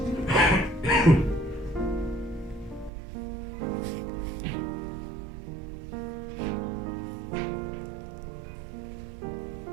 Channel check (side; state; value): left; drops out; at 2.9 s